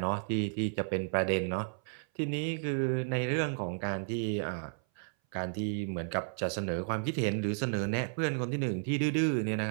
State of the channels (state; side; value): silent; left; 56 dB below the other